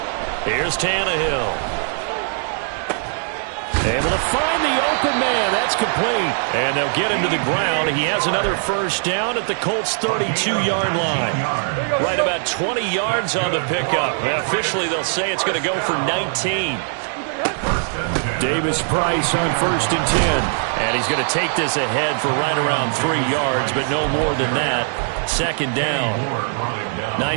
Here's Tannehill. Able to find the open man. That's complete. And they'll get him to the ground. He has another first down at the Colts' 32-yard line. Right about 20 yards on the pickup. And officially, they'll say it's going to go for 19. Davis Price on 1st and 10. And he's going to take this ahead for right around 3 yards, but no more than that. 2nd down.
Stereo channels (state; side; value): silent; left; 61 dB below the other